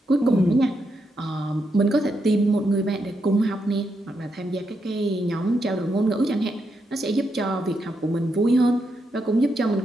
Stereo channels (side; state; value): both; normal; correlation 0.82